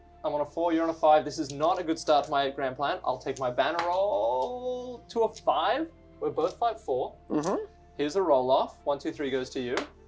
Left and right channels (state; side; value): identical; both; correlation 1.00